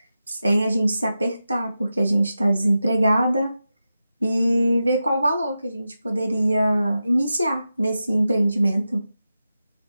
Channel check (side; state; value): both; inverted; correlation -0.91